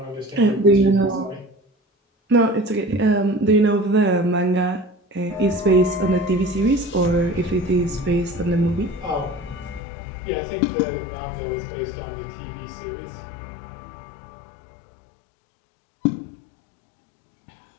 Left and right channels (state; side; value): drops out; right; at 9.8 s